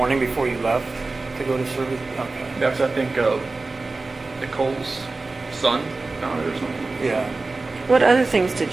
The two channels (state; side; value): quieter; left; 3.5 dB